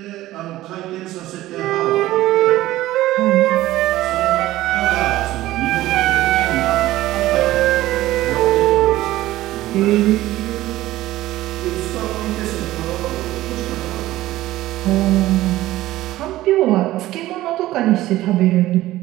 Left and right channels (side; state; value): left; quieter; 15.9 dB